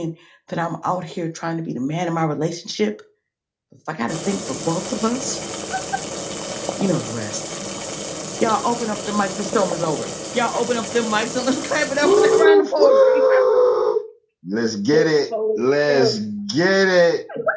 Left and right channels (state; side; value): identical; both; correlation 1.00